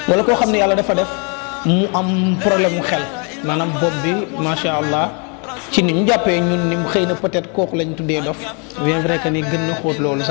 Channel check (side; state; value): right; quieter; 35.5 dB